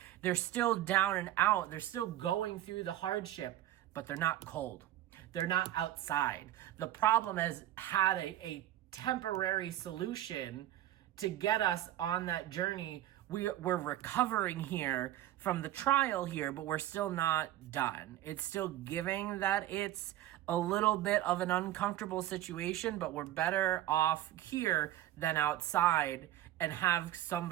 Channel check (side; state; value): left; quieter; 13.5 dB